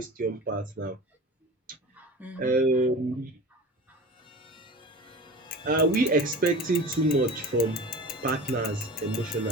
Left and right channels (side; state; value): both; normal; correlation 0.35